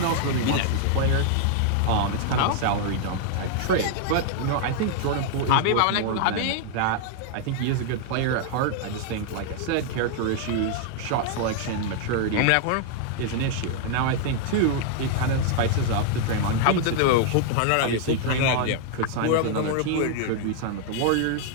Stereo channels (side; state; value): both; different; correlation 0.00